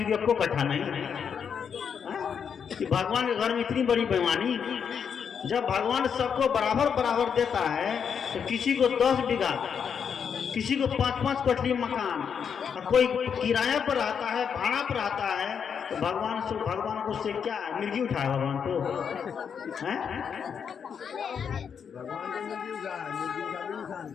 को 1 कट्ठा नहीं, कि भगवान के घर में इतनी बड़ी बेईमानी। जब भगवान सबको बराबर बराबर देता है, तो किसी को 10 बीघा, किसी को 5-5 कोठली मकान, और कोई किराया पर रहता है, भाड़ा पर रहता है, तो भगवान को उससे क्या मिर्गी उठाए भगवान को?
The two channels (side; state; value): right; quieter; 7.1 dB